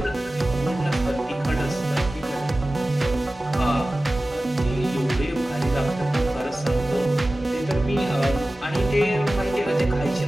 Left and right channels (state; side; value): normal; both; correlation 0.96